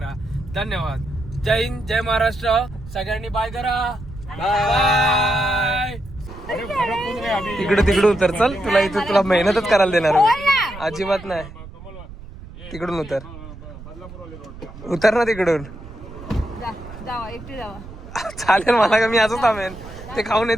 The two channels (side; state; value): right; noise; rumble, 15 dB below the sound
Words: धन्यवाद. जय हिंद, जय महाराष्ट्र. सगळ्यांनी बाय करा. बाय. तिकडून उतर. चल तुला इथे तुला मेहनतच करायला देणार अजिबात नाही. तिकडून उतर ना तिकडून. जावा एकटी जावा. चालेल मला का, मी असंच थांबेन. ते खाऊन